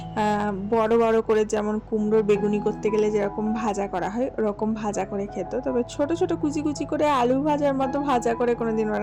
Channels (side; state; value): both; identical; correlation 1.00